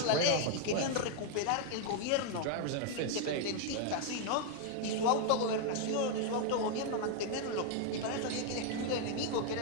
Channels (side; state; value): both; different; correlation 0.00